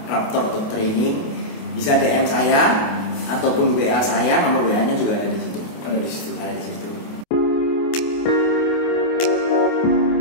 Raptor Dog Training, bisa DM saya ataupun WA saya, nomor WA-nya juga ada di situ. Ada di situ.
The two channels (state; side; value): late; right; 28 ms